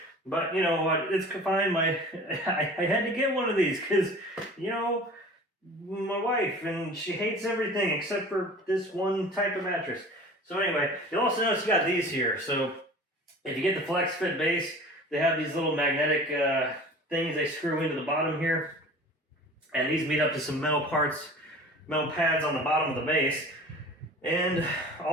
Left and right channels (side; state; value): both; normal; correlation 0.42